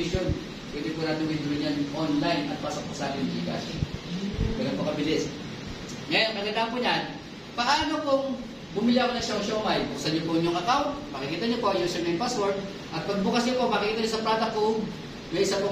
Pwede po natin withdraw niyan online at pasok po sa ating Gcash. Ganun po kabilis. Ngayon, kagandaan po niyan, paano kung bumili ako ng siomay? Buksan niyo po yung account, makikita niyo po yung username password, at pag bukas niyo po, makikita niyo sa product code, may isa po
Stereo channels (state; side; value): identical; both; correlation 1.00